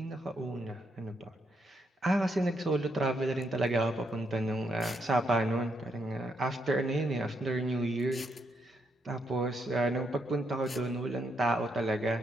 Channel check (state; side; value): normal; both; correlation 0.77